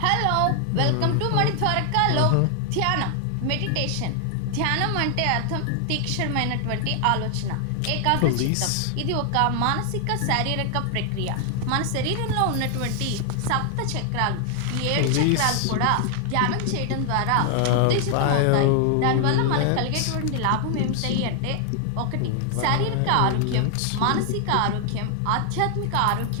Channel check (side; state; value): both; different; correlation 0.00